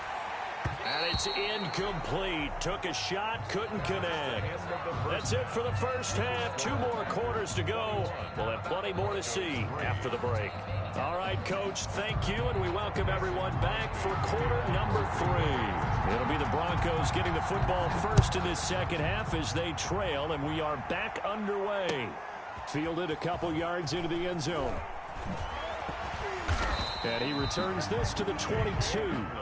And it's incomplete. Took a shot, couldn't connect. That's it for the first half. 2 more quarters to go. We'll have plenty more to see after the break. All right, Coach, thank you, and we welcome everyone back for quarter number 3. It'll be the Broncos getting the football first in this second half as they trail, and we are back underway. Fielded a couple yards into the end zone. And he returns this to the 22.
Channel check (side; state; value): both; identical; correlation 1.00